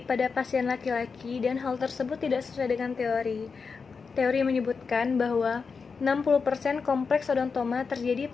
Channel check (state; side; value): quieter; right; 5.2 dB